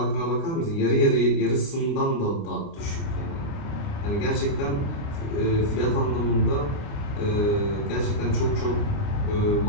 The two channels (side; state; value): right; late; 29 ms